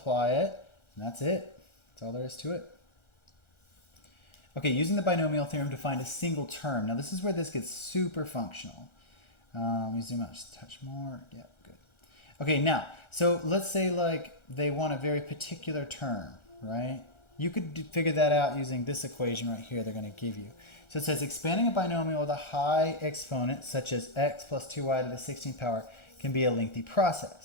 it. And that's it. That's all there is to it. Okay, using the binomial theorem to find a single term. Now this is where this gets super functional. Let me zoom out just a touch more. Yeah, good. Okay, now, so let's say like they want a very particular term, right? You could figure that out using this equation right here they're going to give you. So it says expanding a binomial with a high exponent, such as x plus 2y to the 16th power, can be a lengthy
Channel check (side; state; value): right; late; 1.4 ms